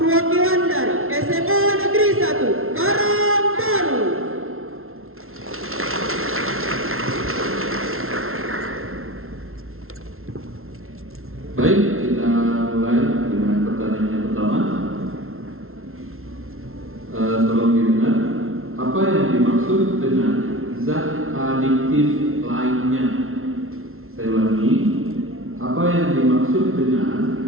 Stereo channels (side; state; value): left; late; 0.62 ms